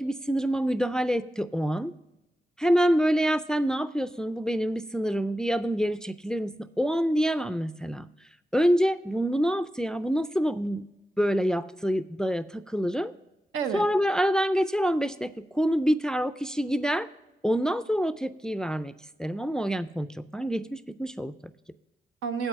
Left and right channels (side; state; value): both; normal; correlation 0.92